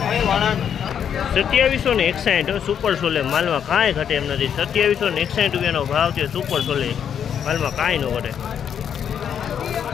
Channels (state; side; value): quieter; right; 8.4 dB